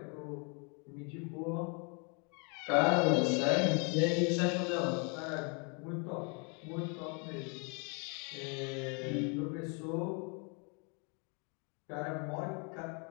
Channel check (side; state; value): right; quieter; 35.2 dB